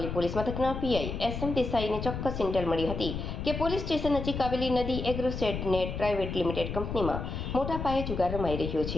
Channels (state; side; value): noise; left; rumble, 5 dB below the sound